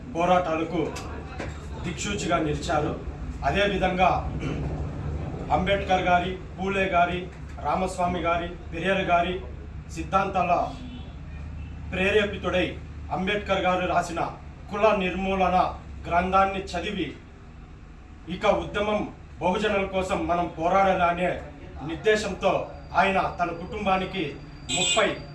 పోరాటాలకు దిక్సూచిగా నిలిచారు. అదేవిధంగా అంబేద్కర్ గారి, పూలే గారి రామస్వామి గారి పెరియర్ గారి సిద్ధాంతాల ప్రేరేపితుడై అంబేద్కర్ గారు రాసిన కుల నిర్మూలన గ్రంథాన్ని చదివి ఇక ఉద్యమం బహుజనుల కోసం మనం పోరాడాలనే నిర్దేశంతో ఆయన తన కుటుంబానికి 30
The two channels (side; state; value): both; identical; correlation 1.00